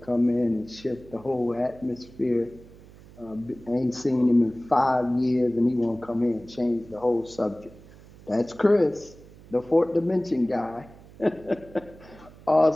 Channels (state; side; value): noise; right; hum, 21 dB below the sound